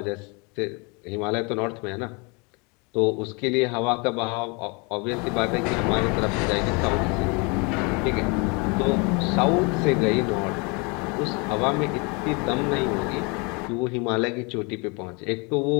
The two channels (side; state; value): right; quieter; 30.6 dB